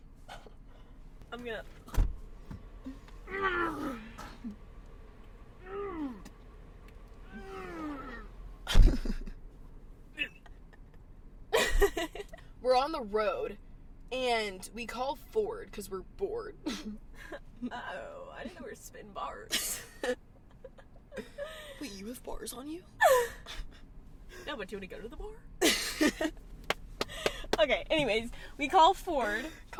We're on the road, and we call Ford because we're bored. Oh, I didn't know we were spitting bars. Wait, you have bars on you? No, but do you want to go to the bar? Okay, anyways, we call Ford.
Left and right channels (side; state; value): both; identical; correlation 1.00